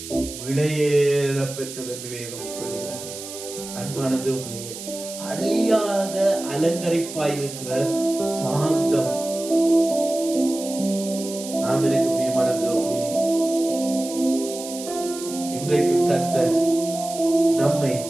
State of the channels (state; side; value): noise; right; hiss, 11 dB below the sound